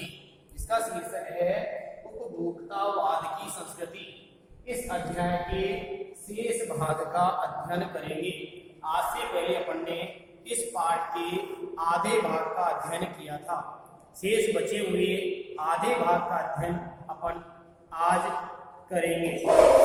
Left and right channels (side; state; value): both; identical; correlation 1.00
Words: इसका शीर्षक है उपभोक्तावाद की संस्कृति। इस अध्याय के शेष भाग का अध्ययन करेंगे। आज से पहले अपन ने इस पाठ के आधे भाग का अध्ययन किया था। शेष बचे हुए आधे भाग का अध्ययन अपन आज करेंगे।